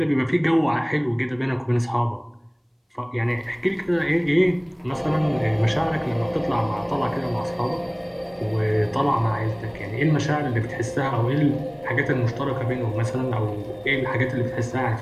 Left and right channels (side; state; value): both; identical; correlation 1.00